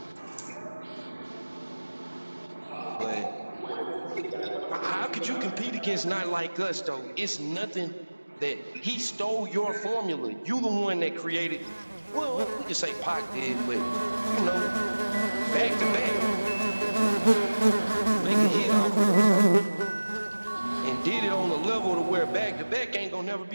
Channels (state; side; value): inverted; both; correlation -1.00